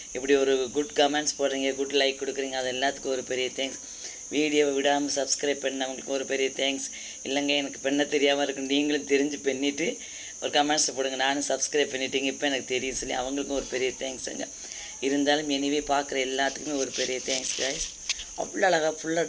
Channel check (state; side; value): identical; both; correlation 1.00